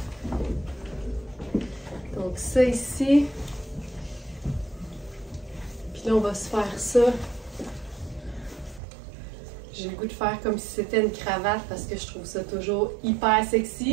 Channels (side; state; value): left; drops out; at 8.8 s